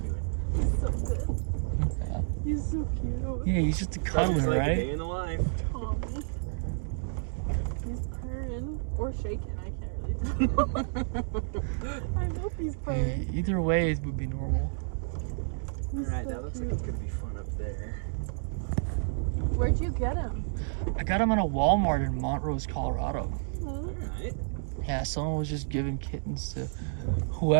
doing? He's so good. He's so cute. Yeah, he's just a It's cuddler, like a right? day in the life. Tommy. He's purring or shaking. I can't really tell. I hope he's purring. Either way, it would be normal. He's All right, so that looks like cute. it's gonna be fun up there. Where'd you get him? I got him at a Walmart in Montrose, Colorado. All right. Yeah, someone was just giving kittens to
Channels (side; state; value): left; silent; digital silence